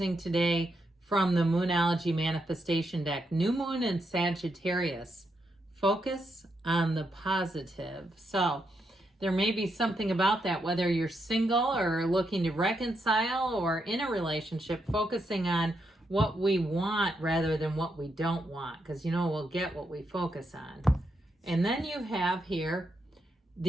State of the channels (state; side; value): normal; both; correlation 0.81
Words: today from the Moonology Manifestation deck. New Moon in Sagittarius. Focus on the positive. So there may be something about that, whether you're single or looking to reconcile or in a relationship, focusing on what we want rather than what we don't want, because we'll get what we focus on. And then you have here,